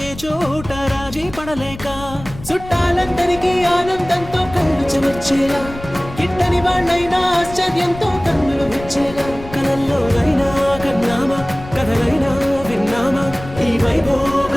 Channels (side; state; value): left; noise; rumble, 15 dB below the sound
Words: ఏ చోట రాజీ పడలేక, చుట్టాలందరికీ ఆనందంతో కళ్ళు చెమర్చేలా, గిట్టని వాళ్ళైనా ఆశ్చర్యంతో కన్నులు విచ్చేలా, కలల్లోనైనా కన్నామా కథలైనా విన్నామా, ఈ